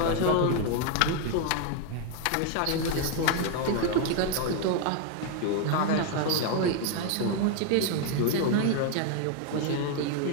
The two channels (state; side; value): different; both; correlation 0.01